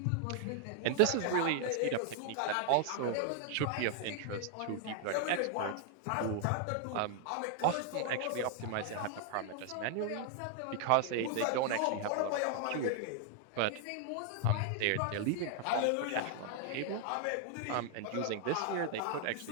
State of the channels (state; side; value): different; both; correlation 0.00